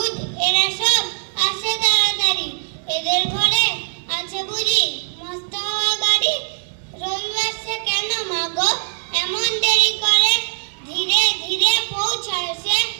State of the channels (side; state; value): left; silent; 57 dB below the other